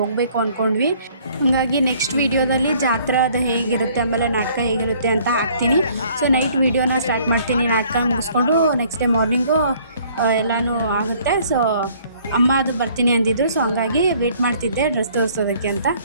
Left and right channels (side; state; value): both; inverted; correlation -0.59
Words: ಹೋಗಬೇಕು ಅಂದ್ಕೊಂಡ್ವಿ. ಹಾಗಾಗಿ ನೆಕ್ಸ್ಟ್ ವೀಡಿಯೋದಲ್ಲಿ ಜಾತ್ರೆ ಅದು ಹೇಗಿರುತ್ತೆ ಆಮೇಲೆ ನಾಟಕ ಹೇಗಿರುತ್ತೆ ಅಂತ ಹಾಕ್ತೀನಿ. ಸೊ ನೈಟ್ ವೀಡಿಯೋನ ಸ್ಟಾರ್ಟ್ ಮಾಡ್ತೀನಿ, ನಾಟಕ ಮುಗಿಸ್ಕೊಂಡು ನೆಕ್ಸ್ಟ್ ಡೇ ಮಾರ್ನಿಂಗು ಎಲ್ಲನೂ ಆಗುತ್ತೆ. ಸೊ ಅಮ್ಮ ಅದು ಬರ್ತೀನಿ ಅಂದಿದ್ರು, ಸೊ ಹಂಗಾಗಿ ವೇಟ್ ಮಾಡ್ತಿದ್ದೆ ಡ್ರೆಸ್ ತೋರಿಸೋದಕ್ಕೆ ಅಂತ.